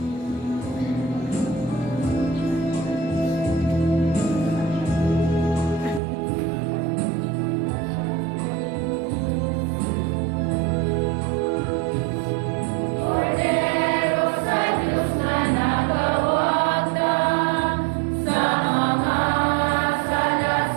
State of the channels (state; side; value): drops out; left; at 6.0 s